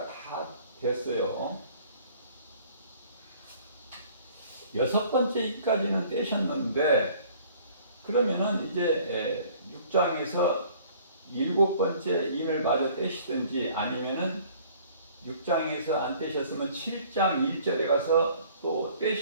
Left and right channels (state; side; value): inverted; both; correlation -0.54